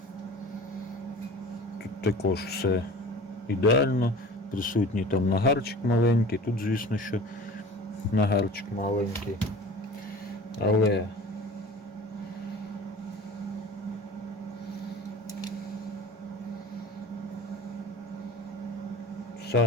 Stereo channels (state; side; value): normal; both; correlation 0.40